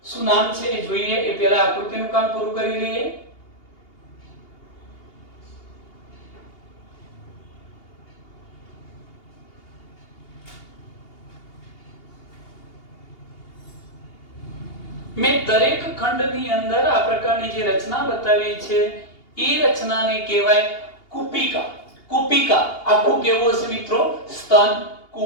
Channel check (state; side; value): late; right; 2.8 ms